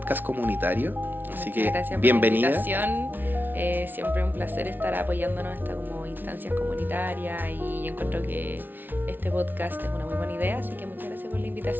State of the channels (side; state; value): left; late; 0.090 ms